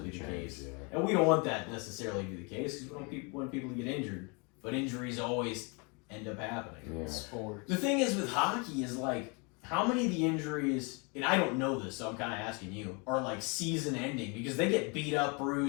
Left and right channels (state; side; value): quieter; right; 32.0 dB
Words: be the Change, case. yeah. And we don't want that necessarily to be the case because we don't want people to get injured. But injuries always end up happening. Yeah. Sports. The thing is with hockey is like, how many of the injuries, and I don't know this, so I'm kind of asking you, are like season ending because they get beat up,